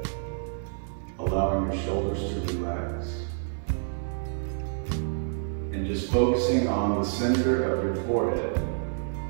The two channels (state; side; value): silent; left; 59 dB below the other